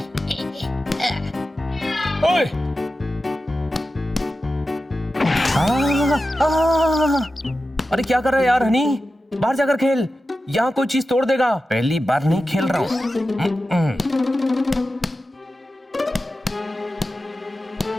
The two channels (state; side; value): normal; both; correlation 0.93